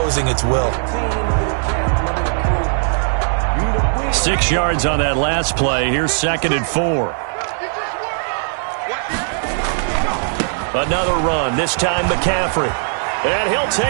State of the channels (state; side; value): silent; left; digital silence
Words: its will. 6 yards on that last play. Here's 2nd and 4. Another run, this time McCaffrey. And he'll